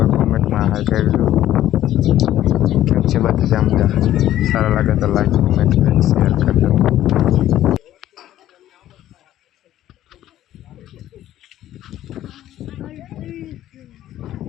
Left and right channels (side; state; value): right; quieter; 13.0 dB